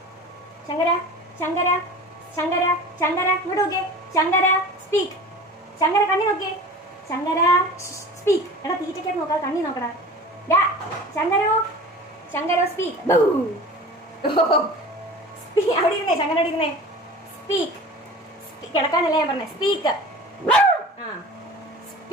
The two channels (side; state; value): both; normal; correlation 0.38